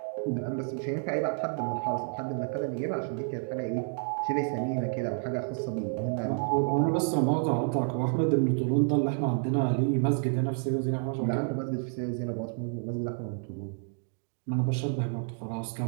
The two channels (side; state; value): left; silent; 58 dB below the other